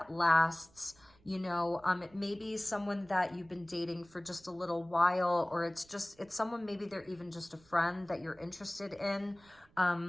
lasts. You know, it may be someone that you've been dating for just a little while, or it's someone, maybe they're even just a friend that you're interested in.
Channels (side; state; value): right; noise; rumble, 28 dB below the sound